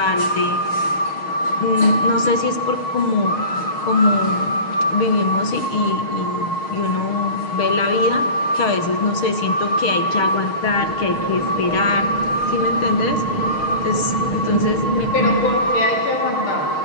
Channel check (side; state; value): right; late; 6.5 ms